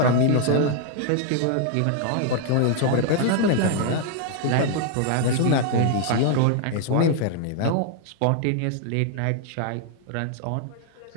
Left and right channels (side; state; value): both; different; correlation 0.00